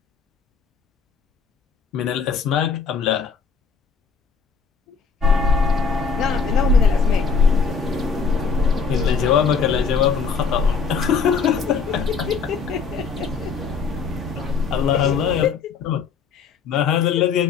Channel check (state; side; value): quieter; right; 5.5 dB